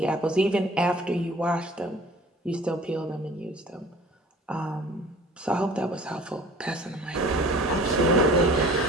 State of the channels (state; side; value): normal; both; correlation 0.47